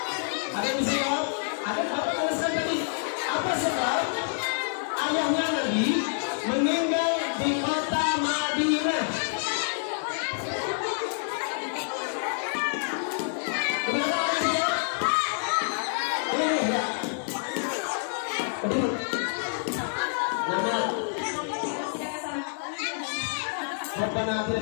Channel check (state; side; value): silent; right; digital silence